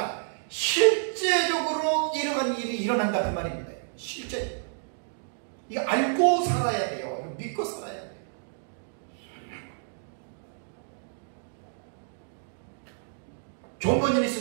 실제적으로 이러한 일이 일어난다 그 말입니다. 실제 이거 알고 살아야 돼요. 이거 믿고 살아야 돼요. 존 버니니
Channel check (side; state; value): left; silent; digital silence